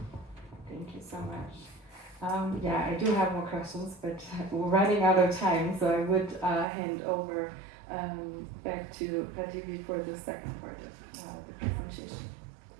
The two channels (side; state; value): left; drops out; at 6.7 s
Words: you so much. Yeah, I do have more questions, but we're running out of time, so I would hand over back to Prativi for the second part of the presentation.